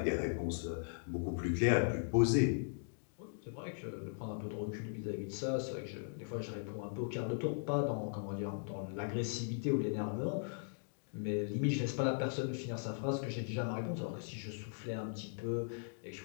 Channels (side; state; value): right; silent; digital silence